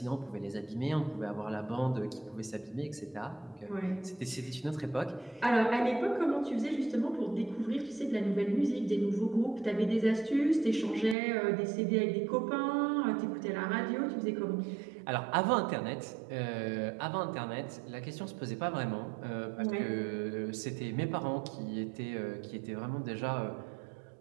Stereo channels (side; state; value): left; drops out; at 11.2 s